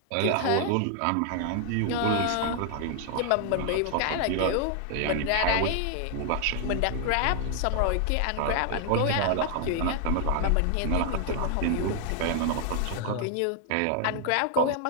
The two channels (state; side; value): different; both; correlation 0.00